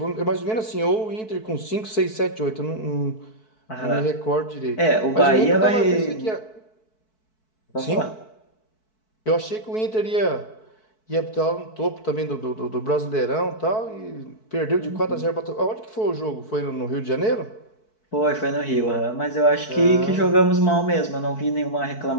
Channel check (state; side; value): late; right; 4.6 ms